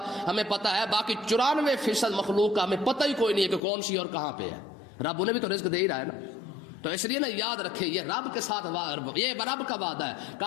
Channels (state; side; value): drops out; right; at 3.6 s